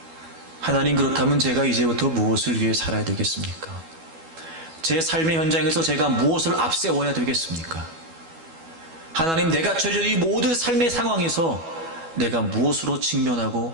하나님, 그렇다면 제가 이제부터 무엇을 위해 살아야 되겠습니까? 제 삶의 현장에서 제가 무엇을 앞세워야 되겠습니까? 하나님, 내가 처해진 이 모든 삶의 상황에서 내가 무엇으로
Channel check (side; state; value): left; late; 12 ms